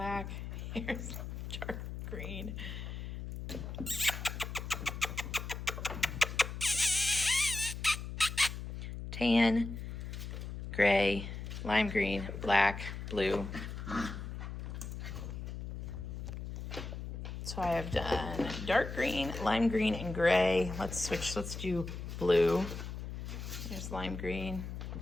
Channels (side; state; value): left; noise; hum, 7 dB below the sound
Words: here's dark green. Tan, gray, lime green, black, blue. So I have done dark green, lime green, and gray. Let's switch, let's do blue. There's lime green.